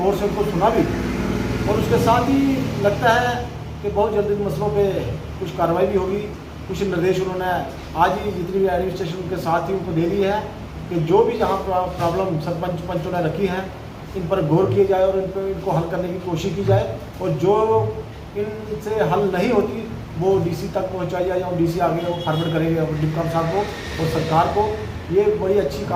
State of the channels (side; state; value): both; identical; correlation 1.00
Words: से उनको सुना भी। और उसके साथ ही लगता है कि बहुत जल्दी इन मसलों पे कुछ कार्रवाई भी होगी। कुछ निर्देश उन्होंने आज ही जितनी भी एडमिनिस्ट्रेशन के साथ ही उनको दे दी है कि जो भी जहाँ प्रॉब्लम सरपंच पंचों ने रखी हैं इन पर गौर किया जाए और इनको हल करने की कोशिश की जाए और जो इनसे हल नहीं होती वो डीसी तक पहुंचाई जाए और डीसी आगे वो फॉरवर्ड करेंगे डिप्टी साहब को और सरकार को। ये बड़ी अच्छी